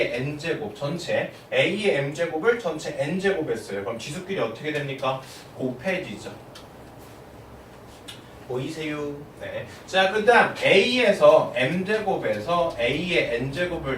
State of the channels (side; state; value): both; identical; correlation 1.00